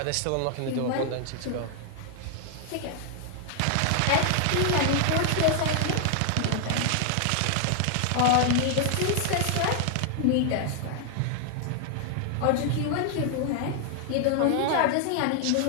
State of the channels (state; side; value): different; both; correlation 0.00